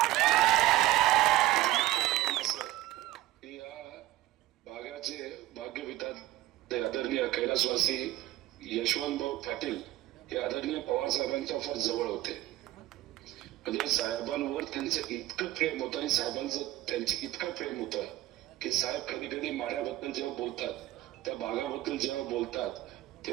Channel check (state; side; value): quieter; left; 15.8 dB